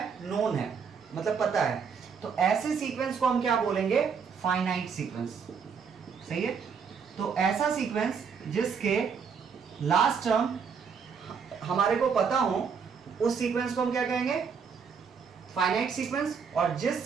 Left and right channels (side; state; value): left; quieter; 6.2 dB